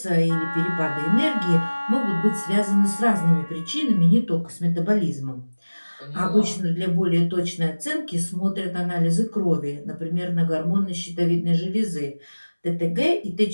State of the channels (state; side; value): inverted; both; correlation -1.00